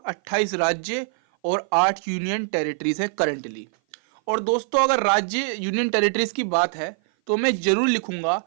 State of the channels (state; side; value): silent; left; 56 dB below the other